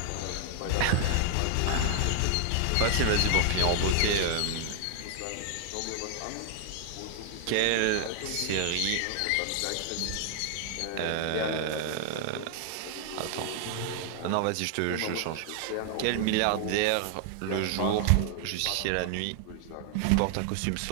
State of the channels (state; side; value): different; both; correlation 0.00